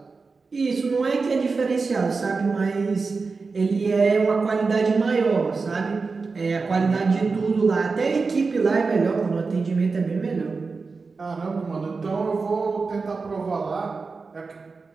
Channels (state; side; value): quieter; left; 4.4 dB